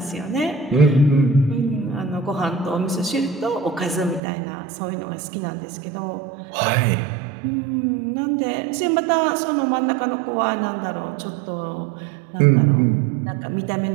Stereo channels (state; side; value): drops out; left; at 4.2 s